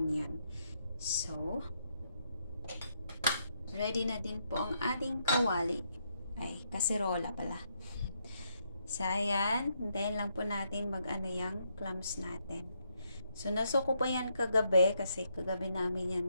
So, ready na din po ang ating kawali. Ay, kaserola pala. So, ayan. Hintayin lang po natin mag-ano yung clams natin. So, nasuko po yan kagabi kasi kagabi namin yan,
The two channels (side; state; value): both; inverted; correlation -0.77